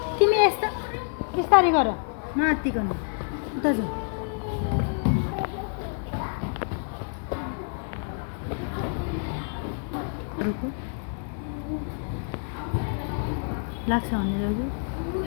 तिमी यस्तो बिस्तारै गर नआत्तिकन। उता जाऊ। लाग्छ भने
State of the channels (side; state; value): right; silent; 57 dB below the other